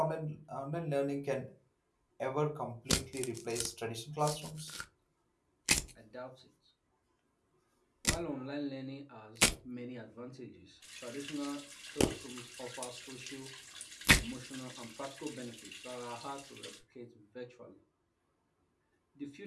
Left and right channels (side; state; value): both; identical; correlation 1.00